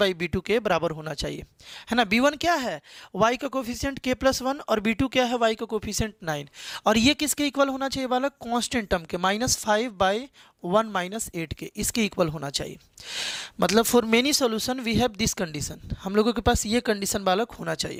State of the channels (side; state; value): both; identical; correlation 1.00